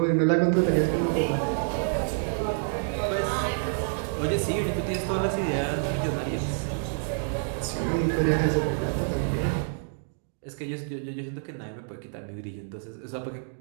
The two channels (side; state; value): left; silent; digital silence